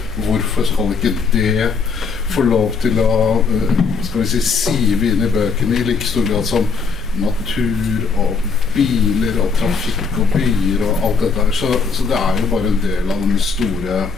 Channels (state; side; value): quieter; right; 4.9 dB